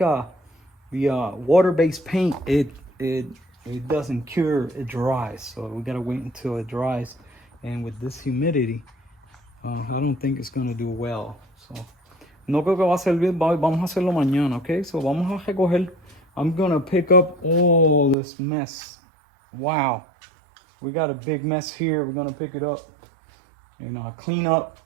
water-based paint it doesn't cure, it dries. So we gotta wait until it dries, and with this humidity, I don't think it's gonna do well. So no creo que va a servir. Vamos a hacerlo mañana, okay? So vamos a recoger. I'm gonna pick up all this mess. Wow, we got a big mess here. We're gonna pick it up and clean up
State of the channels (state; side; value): drops out; left; at 18.2 s